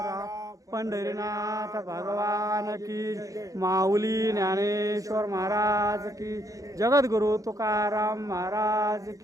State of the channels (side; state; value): left; late; 0.16 ms